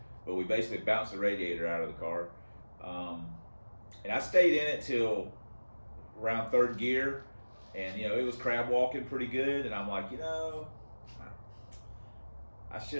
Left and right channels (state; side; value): inverted; both; correlation -1.00